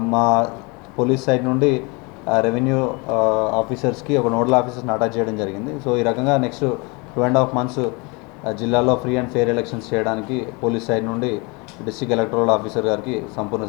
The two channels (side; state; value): right; quieter; 28.7 dB